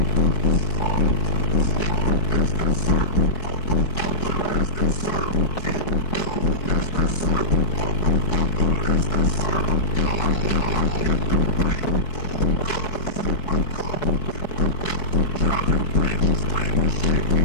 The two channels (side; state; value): right; late; 4.6 ms